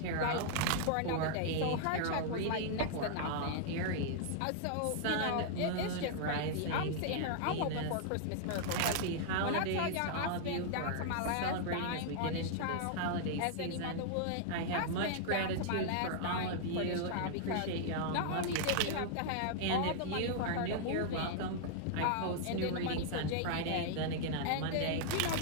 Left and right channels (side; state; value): both; different; correlation -0.01